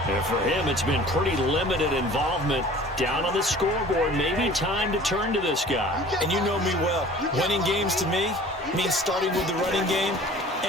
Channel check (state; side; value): normal; both; correlation 0.46